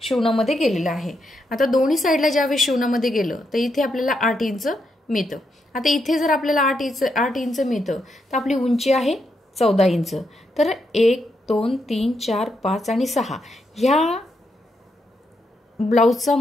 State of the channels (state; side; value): normal; both; correlation 0.81